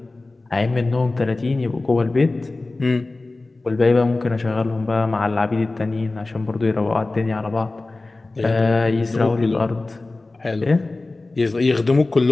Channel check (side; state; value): right; quieter; 3.2 dB